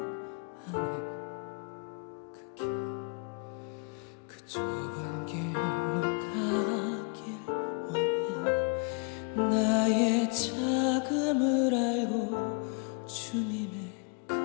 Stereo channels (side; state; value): right; quieter; 36.7 dB